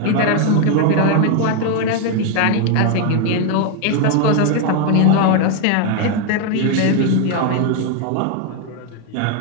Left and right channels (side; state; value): both; different; correlation 0.01